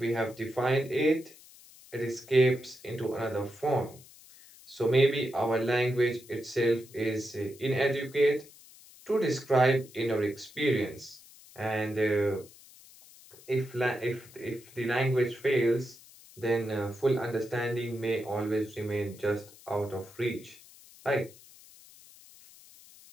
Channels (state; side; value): noise; left; hiss, 22 dB below the sound